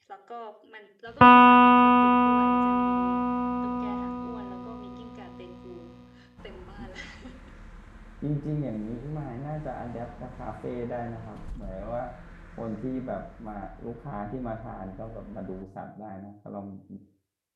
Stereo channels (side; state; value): both; identical; correlation 1.00